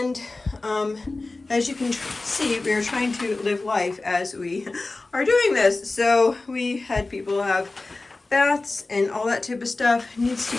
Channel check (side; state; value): right; quieter; 3.3 dB